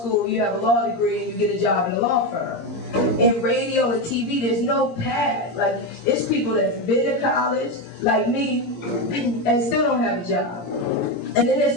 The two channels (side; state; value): right; late; 17 ms